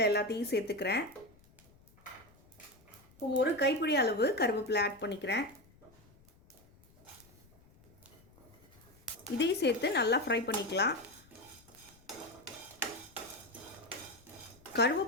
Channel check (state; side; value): noise; left; rumble, 27 dB below the sound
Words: எல்லாத்தையும் சேர்த்துக்கிறேன். இப்போ 1 கைப்பிடி அளவு கருவேப்பிலை ஆட் பண்ணிக்கிறேன். இதையும் சேர்த்து நல்லா ஃப்ரை பண்ணிக்கலாம்.